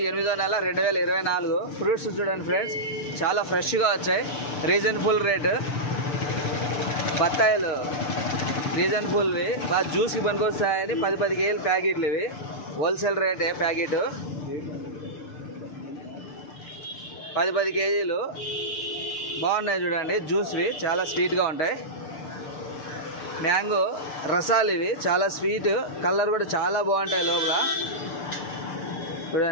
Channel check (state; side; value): late; right; 6.8 ms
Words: 8వ నెల 2024. ఫ్రూట్స్ చూడండి ఫ్రెండ్స్, చాలా ఫ్రెష్గా వచ్చాయి. రీజనబుల్ రేటు బత్తాయిలు, రీజనబుల్వి, బాగా జ్యూస్కి పనికొస్తాయని 10 కేజీలు ప్యాకెట్లు. ఇవి హోల్సేల్ రేటే ప్యాకెట్. 10 కేజీలు బాగున్నాయి చూడండి. జ్యూస్వి చాలా స్వీట్గా ఉంటాయి. మ్యాంగో రసాలు ఇవి చాలా స్వీట్, కలర్ కూడా చాలా బాగుంటాయి. లోపల